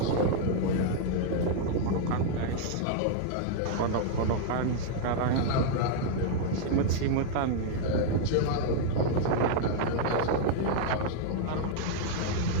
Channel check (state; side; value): different; both; correlation -0.01